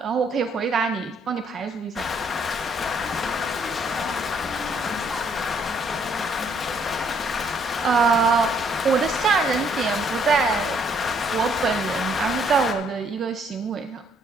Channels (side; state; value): both; normal; correlation 0.67